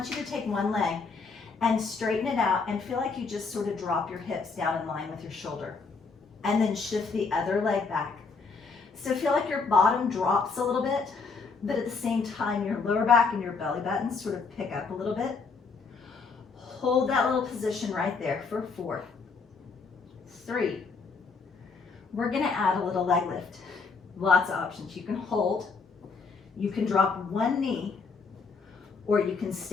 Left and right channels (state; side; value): quieter; right; 4.7 dB